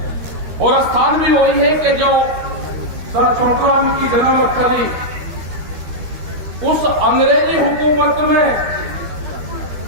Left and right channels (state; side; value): late; left; 13 ms